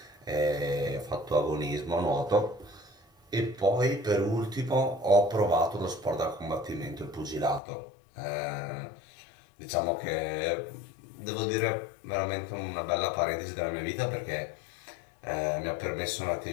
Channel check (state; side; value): drops out; right; at 7.6 s